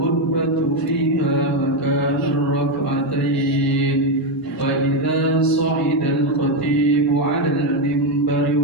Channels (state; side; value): normal; both; correlation 0.07